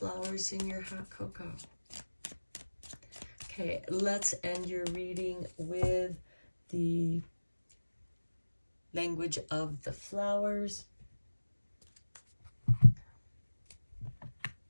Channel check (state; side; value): inverted; both; correlation -1.00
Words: in your hot cocoa. Okay, let's end your reading with the language of the flowers.